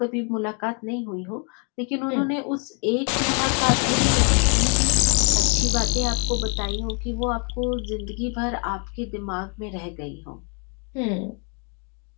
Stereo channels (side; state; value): right; quieter; 38.0 dB